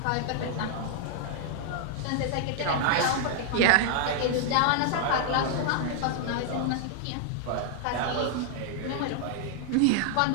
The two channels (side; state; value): both; different; correlation 0.00